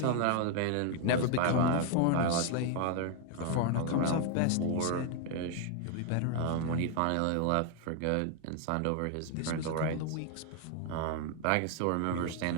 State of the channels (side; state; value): both; different; correlation 0.00